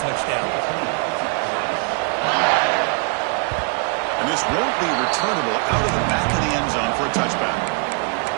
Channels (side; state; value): left; quieter; 36.2 dB